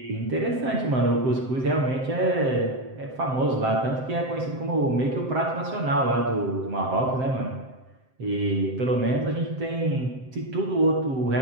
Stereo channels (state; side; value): late; left; 7.7 ms